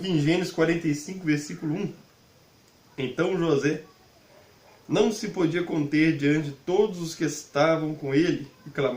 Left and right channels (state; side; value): identical; both; correlation 1.00